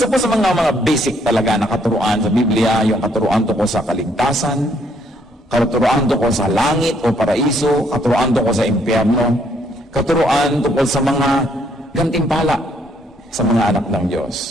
po sa mga basic talaga na katuruan sa Biblia, yung katuruan tungkol sa kaligtasan, katuruan tungkol sa langit o paraiso, katuruan tungkol sa impyerno, katuruan tungkol sa mga gantimpala sa mga anak ng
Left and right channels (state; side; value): normal; both; correlation 0.69